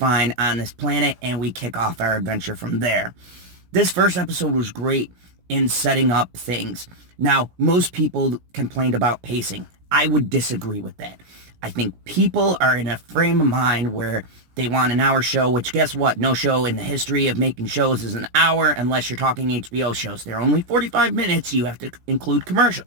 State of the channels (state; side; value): late; left; 17 ms